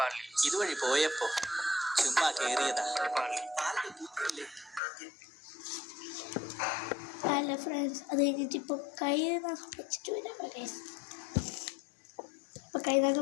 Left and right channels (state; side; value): drops out; right; at 4.8 s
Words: ഇതുവഴി പോയപ്പോ ചുമ്മാ കേറിയതാ. അല്ല ഫ്രണ്ട്സ്, അത് കഴിഞ്ഞിട്ട് ഇപ്പോൾ കൈ നഖം വെച്ചിട്ട് വരാം ഗൈസ്. ഇപ്പോൾ കൈ